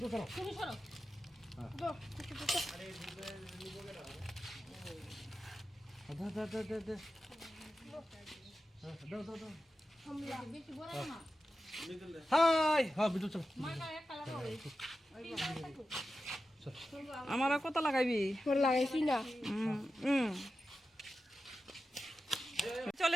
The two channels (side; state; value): both; normal; correlation 0.92